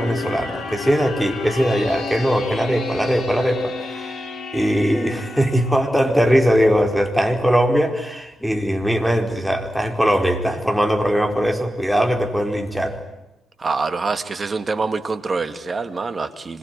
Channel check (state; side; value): normal; both; correlation 0.92